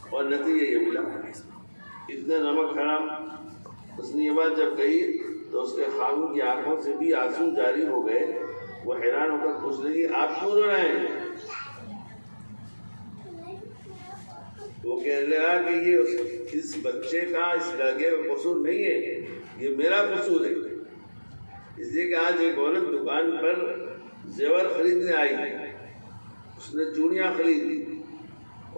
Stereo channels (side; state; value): both; inverted; correlation -1.00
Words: اور نتیجہ یہ ملا، اتنا نمک حرام۔ اس نے یہ بات جب کہی تو اس کے خاوند کی آنکھوں سے بھی آنسو جاری ہو گئے۔ وہ حیران ہو کر پوچھ لگی آپ کیوں رو رہے ہیں؟ وہ کہنے لگا کہ یہ اس بچے کا، اس لڑکے کا قصور نہیں ہے، یہ میرا قصور ہے۔ اس لیے کہ آج ایک عورت دکان پر زیور خریدنے آئی، اس نے چوڑیاں خریدی